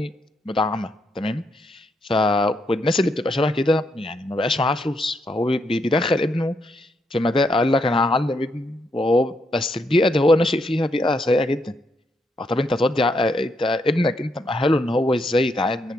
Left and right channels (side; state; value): both; normal; correlation 0.77